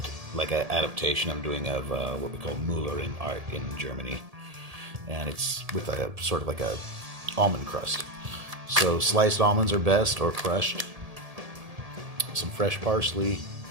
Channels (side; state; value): left; late; 1.7 ms